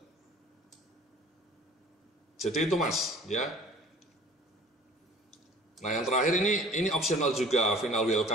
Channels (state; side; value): normal; both; correlation 0.48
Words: Jadi itu Mas, ya. Nah, yang terakhir ini optional juga, final